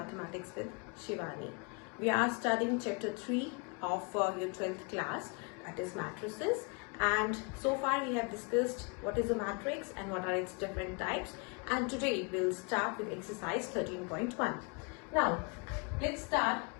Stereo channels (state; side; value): quieter; right; 32.8 dB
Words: with Shivani. We are studying chapter 3 of your 12th class, that is matrices, and so far we have discussed what is a matrix and what are its different types, and today we'll start with exercise 13.1. Now let's start.